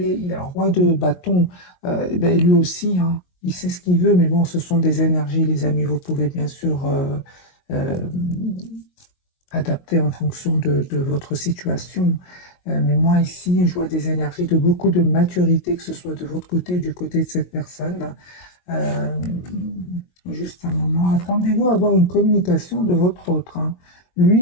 il est un roi de bâton. Ben, lui aussi, hein, il sait ce qu'il veut, mais bon, ce sont des énergies, les amis. Vous pouvez bien sûr adapter en fonction de votre situation. Mais moi, ici, je vois des énergies de beaucoup de maturité, que ce soit de votre côté ou du côté de cette personne. Juste un moment, attendez-vous à avoir une communication de votre autre. Hein.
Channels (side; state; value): right; late; 22 ms